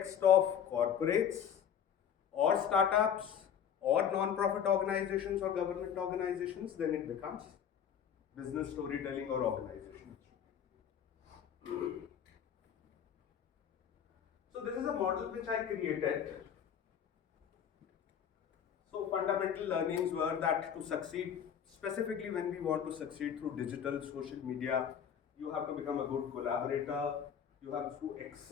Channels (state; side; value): quieter; right; 8.4 dB